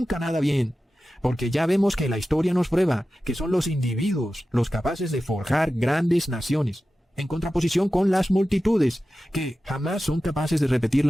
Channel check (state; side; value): normal; both; correlation 0.94